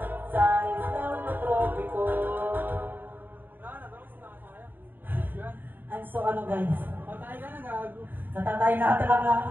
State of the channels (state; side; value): late; left; 0.092 ms